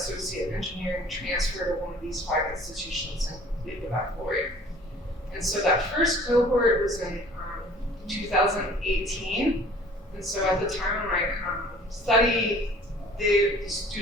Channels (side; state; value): both; normal; correlation 0.50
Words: in engineering, transfer to one of these 5 institutions and complete the baccalaureate. And so that first cohort was in 2018, and so at the time of my study, the